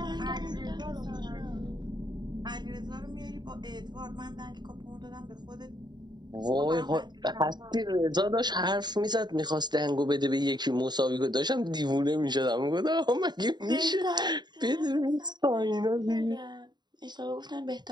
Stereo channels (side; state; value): left; late; 0.21 ms